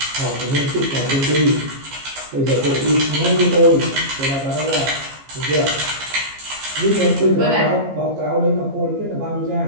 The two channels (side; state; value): left; late; 15 ms